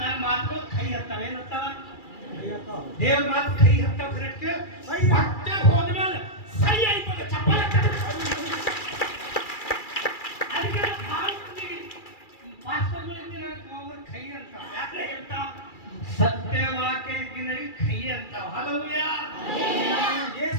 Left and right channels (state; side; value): late; right; 2.3 ms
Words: ಮಾತುಗಳು ಕೈ ಹತ್ತಾವ. ಏನತ್ತಾವ? ದೇವ್ರ ಮಾತು ಕೈ ಹತ್ತಾವ. ಕರೆಕ್ಟ್. ಹೊಟ್ಟೆ ಹೋದ್ಮೇಲೆ ಸೈ ಆಯ್ತದ ಚಪ್ಪಾಳೆ ಅದಕ್ಕೆ ಪಾಸ್ಟರ್ಗಳಿಗೆ ಕೈ ಅಂತ ಯಾಕೆ ಹೇಳ್ತಾವ? ಸತ್ಯವಾಕ್ಯ ಇದ್ದಿನಲ್ಲಿ ಕೈ ಅಂತಾವ. ಹಲ್ಲೆಲೂಯಾ.